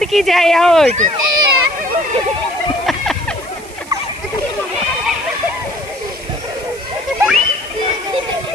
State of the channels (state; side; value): noise; right; hiss, 19 dB below the sound